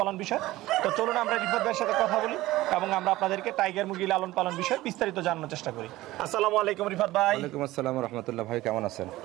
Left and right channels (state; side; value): quieter; left; 17.3 dB